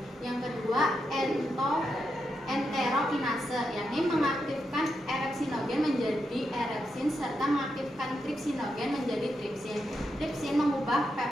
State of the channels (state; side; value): normal; both; correlation 0.84